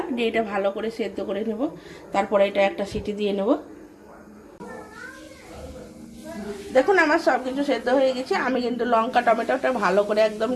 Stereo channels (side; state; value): both; identical; correlation 1.00